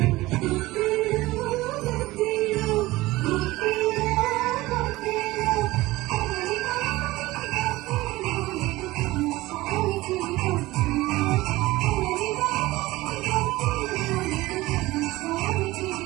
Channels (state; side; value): quieter; left; 19.0 dB